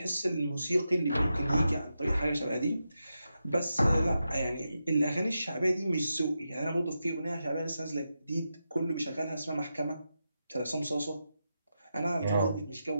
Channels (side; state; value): both; inverted; correlation -0.88